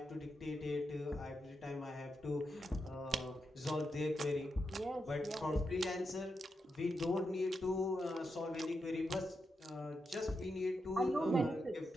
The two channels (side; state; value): both; normal; correlation 0.86